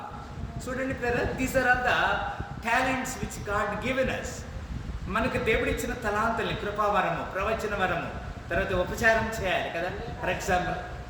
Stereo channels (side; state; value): both; identical; correlation 1.00